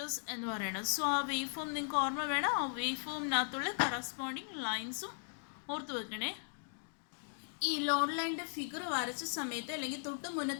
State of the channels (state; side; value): silent; right; digital silence